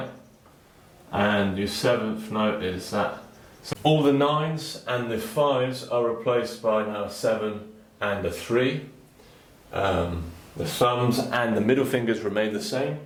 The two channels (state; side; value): identical; both; correlation 1.00